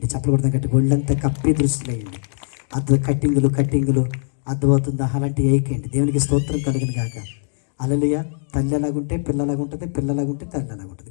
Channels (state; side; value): silent; right; digital silence